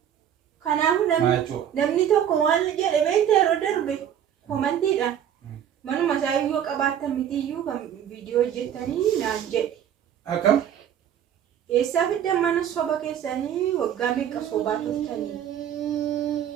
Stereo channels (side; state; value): left; quieter; 9.7 dB